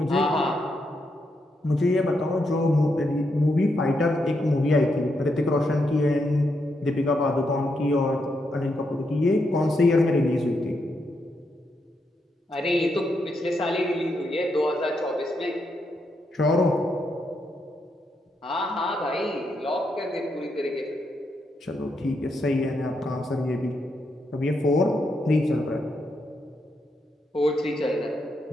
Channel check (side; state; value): both; normal; correlation 0.81